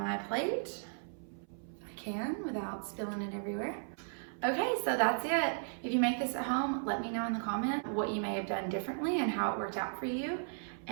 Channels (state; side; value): silent; left; 54 dB below the other